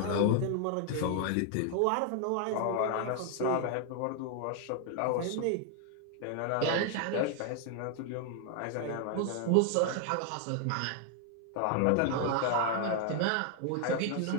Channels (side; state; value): both; different; correlation 0.00